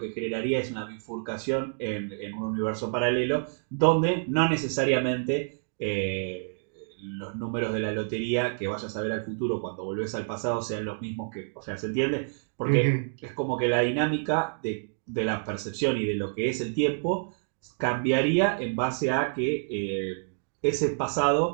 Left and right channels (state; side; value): silent; left; digital silence